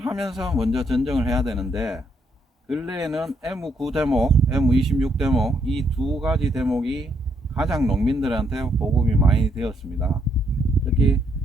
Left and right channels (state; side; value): normal; both; correlation 0.74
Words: 먼저 전정을 해야 되는데, 근래에는 M9 대목, M26 대목 이 두 가지 대목이 가장 농민들한테 보급이 많이 되었습니다. 특히